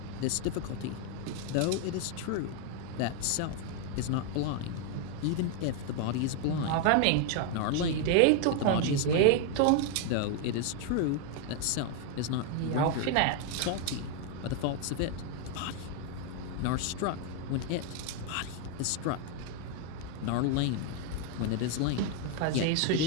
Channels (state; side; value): different; both; correlation 0.01